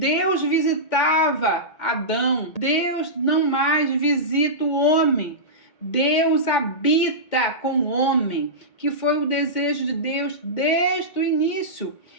visitava Adão, Deus não mais visita o homem. Deus habita com o homem, que foi o desejo de Deus desde o início.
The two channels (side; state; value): right; late; 2.1 ms